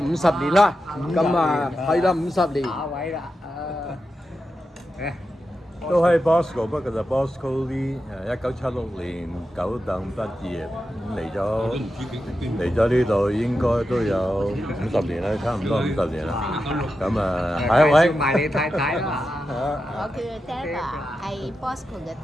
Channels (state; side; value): normal; both; correlation 0.89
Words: 年啦。咁啊，係啦50年。下位啦，都係 Bosco， 不過就 Bosco Lee， 1976年九等畢業，嚟咗呢度應該都有50年啦，差唔多50年啦。咁啊，下一位。埋你太太啦。我叫 Deva， 係 Bosco 嘅